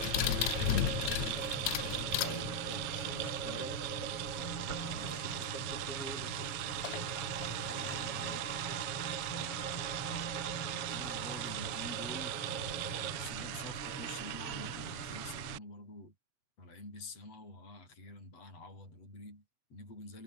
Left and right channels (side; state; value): right; late; 7.2 ms